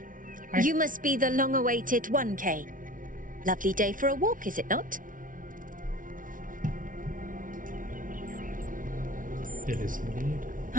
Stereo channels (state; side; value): late; left; 0.38 ms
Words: Hi. You must be the long-awaited 1K. Lovely day for a walk, is it not? It is indeed.